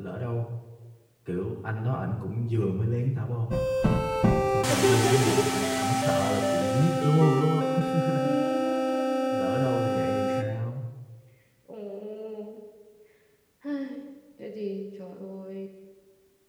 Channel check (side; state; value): both; identical; correlation 1.00